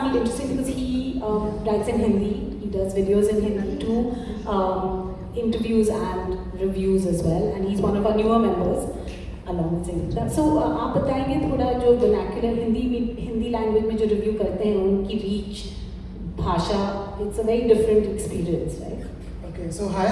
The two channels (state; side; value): identical; both; correlation 1.00